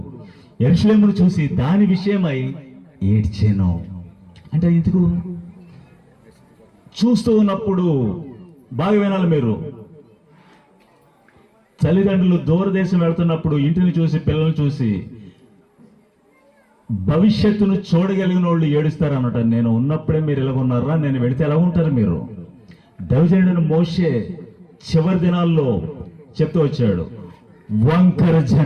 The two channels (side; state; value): both; identical; correlation 1.00